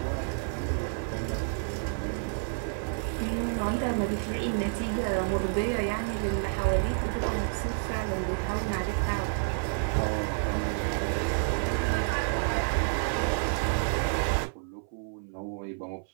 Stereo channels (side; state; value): left; silent; 58 dB below the other